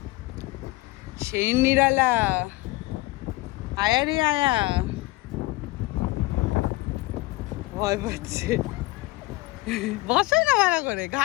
সেই নিরালা, আয়া রে আয়া, ভয় পাচ্ছে। বসাই না ভালো করে,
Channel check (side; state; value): right; quieter; 20.7 dB